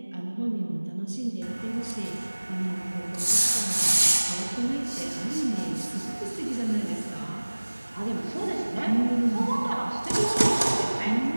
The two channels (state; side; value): inverted; both; correlation -1.00